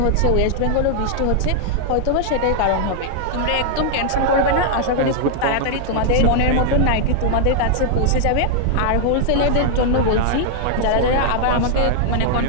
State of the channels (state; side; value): different; both; correlation -0.01